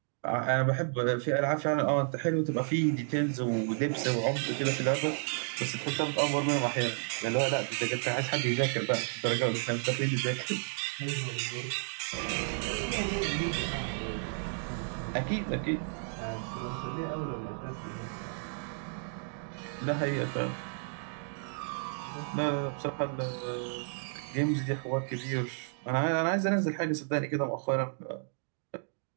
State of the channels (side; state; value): left; silent; 56 dB below the other